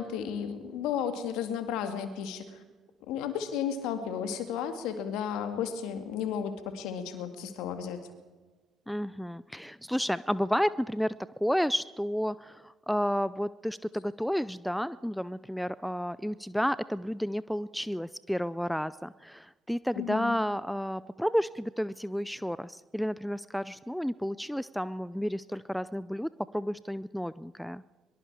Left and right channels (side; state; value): both; normal; correlation 0.87